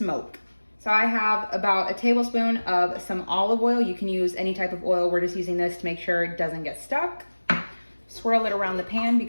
So I have about a tablespoon of some olive oil. You can use any type of oil. We're just using this to make sure it doesn't get stuck. Swirl it around the pan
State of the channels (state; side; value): inverted; both; correlation -1.00